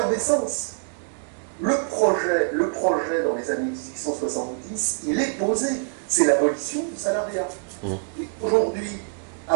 Le projet dans les années 1870, il est posé. C'est l'abolition du salariat. Mhm. Et aujourd'hui,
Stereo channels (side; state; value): left; silent; 62 dB below the other